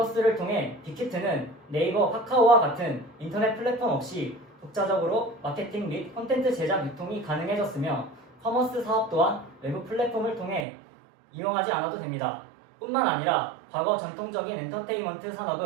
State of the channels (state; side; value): drops out; left; at 10.7 s